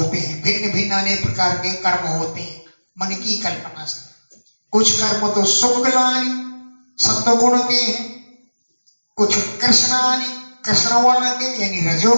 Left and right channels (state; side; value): inverted; both; correlation -1.00